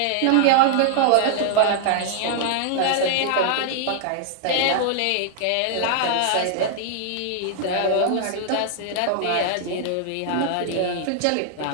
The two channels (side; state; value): both; different; correlation -0.01